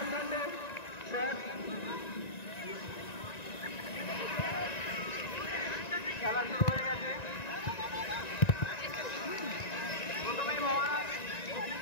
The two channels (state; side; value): late; right; 1.9 ms